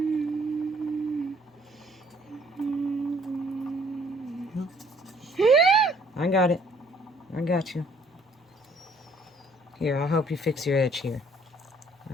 I got it. I got you. Here, I'll help you fix your edge here.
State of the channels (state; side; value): normal; both; correlation 0.61